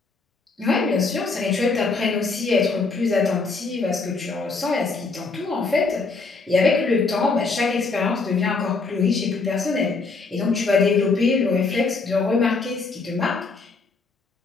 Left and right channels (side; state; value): right; quieter; 4.1 dB